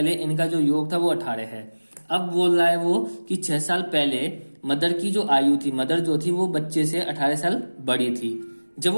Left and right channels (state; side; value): inverted; both; correlation -1.00